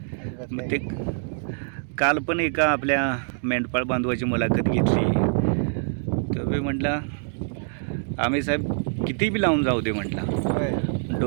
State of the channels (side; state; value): left; silent; digital silence